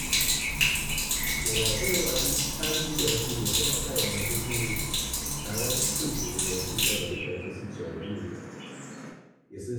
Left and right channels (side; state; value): both; identical; correlation 1.00